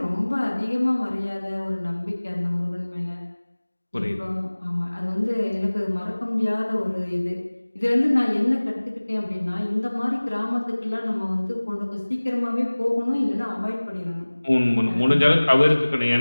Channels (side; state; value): both; inverted; correlation -1.00